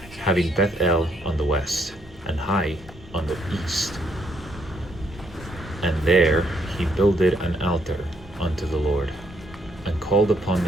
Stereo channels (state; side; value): normal; both; correlation 0.72